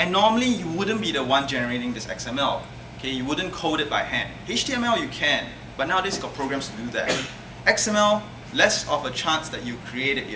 normally you wouldn't be the one generating this XML. Okay, you wouldn't code it by hand. HTML you can, but nowadays you've got programs to do that. XML, less of a chance that you create it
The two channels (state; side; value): identical; both; correlation 1.00